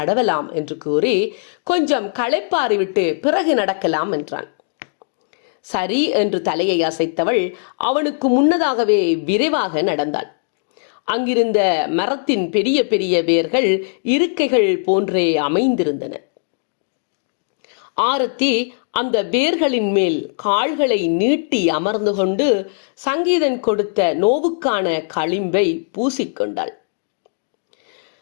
என்று கூறி கொஞ்சம் களைப்பாரி விட்டு பிறகு நடக்கலாம் என்றான். சரி என்று தலையை அசைத்தவள் அவனுக்கு முன்னதாகவே விரைவாக நடந்தாள். அங்கிருந்த மரத்தின் பெரிய பெரிய வேர்கள் இருக்கைகள் போன்றே அமைந்திருந்தன. ஆரத்தி அந்த வேர்களின் மேல் கால்களை நீட்டி அமர்ந்து கொண்டு சங்கீதன் கொடுத்த நோவுக்கான களிம்பை பூசிக்கொண்டாள்.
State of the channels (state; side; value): silent; right; digital silence